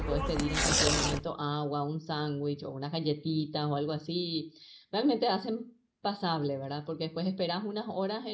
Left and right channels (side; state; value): both; identical; correlation 1.00